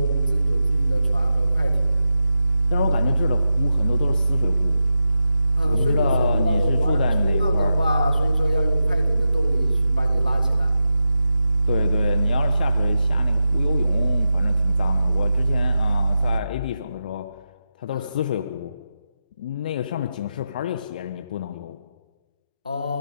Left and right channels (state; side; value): inverted; both; correlation -0.88